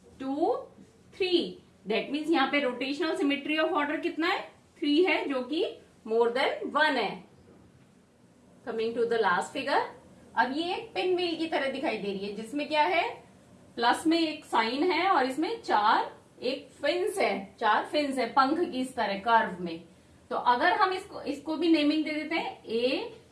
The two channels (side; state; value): both; identical; correlation 1.00